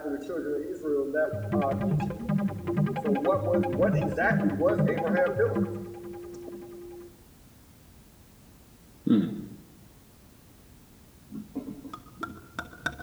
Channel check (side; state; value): both; identical; correlation 1.00